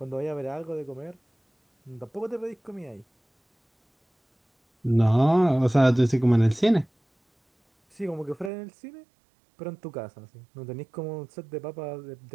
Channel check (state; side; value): drops out; left; at 8.5 s